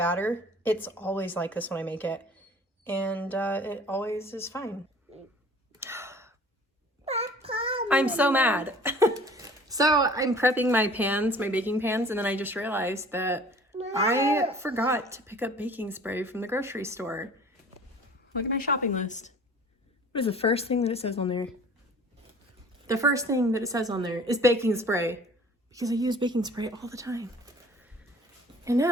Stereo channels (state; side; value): normal; both; correlation 0.48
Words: It's always like this when I make it, and it always is fine. I'm so mad. So I'm prepping my pans, my baking pans, and then I just realized that I forgot to pick up baking spray from the grocery store. Look at my shopping list. What is the first thing that it says on there? The first thing that it says on there is baking spray, because I use baking spray all the time. And